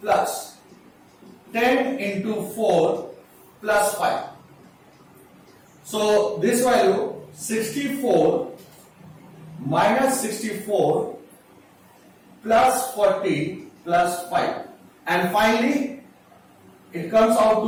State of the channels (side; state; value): both; identical; correlation 1.00